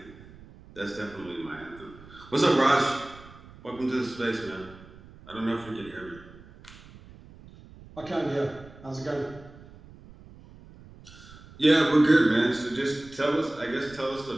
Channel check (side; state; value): right; noise; rumble, 20 dB below the sound